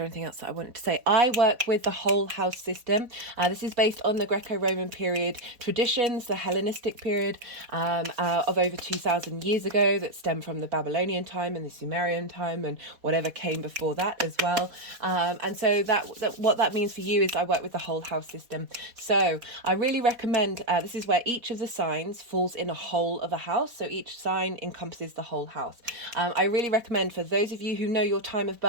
anything else that I wanted to say? I work with the whole house system. This is based on the Greco-Roman period traditions, the Hellenistic period of over 2,000 years ago that stem from the Babylonian time and the Sumerian time and whatever came before that as well. And so that what that means for you is I work with the whole house system. So I really recommend, this is where each of the signs falls in a whole of a house. So each sign encompasses the whole house. I really recommend for those of you who know your time of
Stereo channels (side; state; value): left; late; 4.2 ms